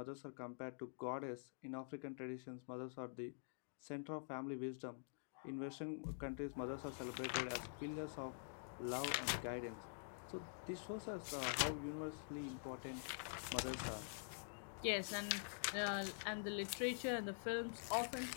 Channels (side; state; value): right; silent; digital silence